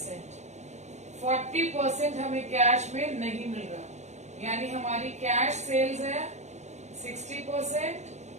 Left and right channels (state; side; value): late; left; 0.33 ms